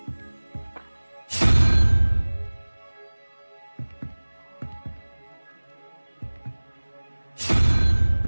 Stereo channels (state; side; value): inverted; both; correlation -1.00